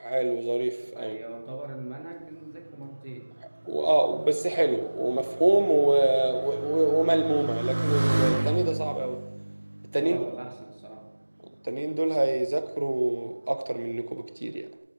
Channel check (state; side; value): inverted; both; correlation -1.00